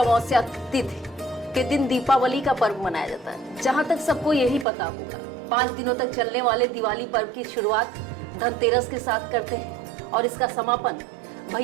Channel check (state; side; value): drops out; left; at 4.7 s